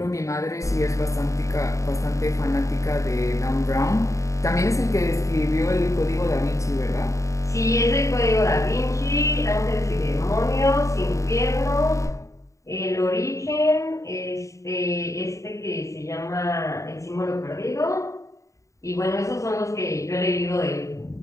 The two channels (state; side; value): late; right; 0.15 ms